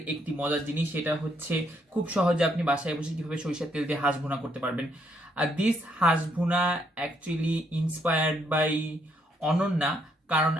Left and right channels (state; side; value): normal; both; correlation 0.72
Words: একটি মজার জিনিস। সেটা হচ্ছে খুব সহজে আপনি বাসায় বসে কিভাবে সরিষার তেল দিয়ে হাঁস ভুনা করতে পারবেন। আর দিস হাঁস ভুনা অ্যাকচুয়ালি ইন্সপায়ার্ড বাই অনন্যা, কারণ